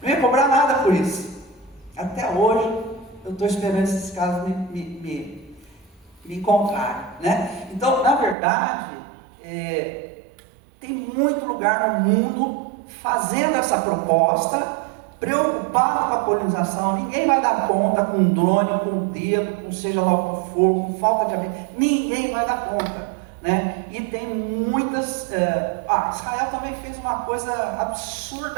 Não ia cobrar nada por isso. Até hoje eu estou esperando esses casos me encontrarem, né? Então, na verdade, tem muito lugar no mundo fazendo essa proposta, preocupado com a polinização. Ninguém vai dar conta com drone, com dedo, com seja lá o que for, com falta de abelha. Ninguém vai dar conta, né? E tem muitas... Israel também fez uma coisa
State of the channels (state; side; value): drops out; left; at 8.3 s